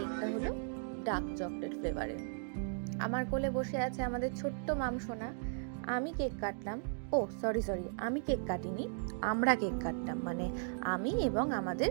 হলো ডার্ক চকলেট ফ্লেভারের। আমার কোলে বসে আছে আমাদের ছোট্ট মামসোনা। আমি কেক কাটলাম, ও সরি আমি কেক কাটিনি, আমরা কেক কাটলাম, মানে আমি এবং আমাদের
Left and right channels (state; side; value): silent; left; digital silence